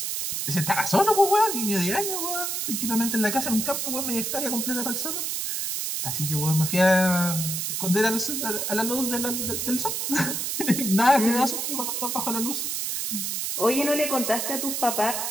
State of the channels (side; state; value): right; noise; hiss, 2 dB below the sound